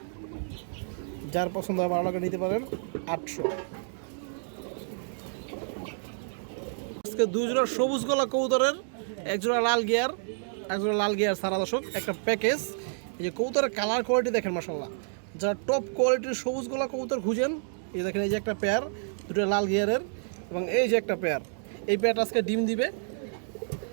যার পছন্দ হয় ভালো লাগে নিতে পারেন, 800। আজকে 2 জোড়া সবুজ গলা কবুতরের, এক জোড়া লাল গিয়ার, এক জোড়া লাল গিয়ার সারা দর্শক, একটা প্যাকেজ। এই যে কবুতরের কালার কোয়ালিটি দেখেন, মাশাআল্লাহ। যারা টপ কোয়ালিটির সবুজ গলা কবুতর খুঁজেন, এই দেখেন এই যে একটা পেয়ার, দুটো লাল গিয়ারের, এবং এই যে একটা পেয়ার। এই পেয়ারটা আজকে ডিম দিবে।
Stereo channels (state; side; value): silent; left; digital silence